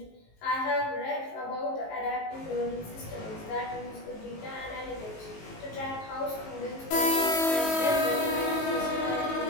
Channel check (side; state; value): right; late; 19 ms